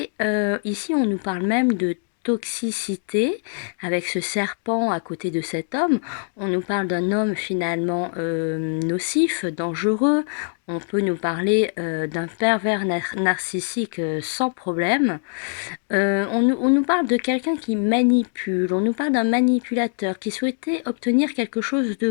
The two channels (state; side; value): silent; right; 63 dB below the other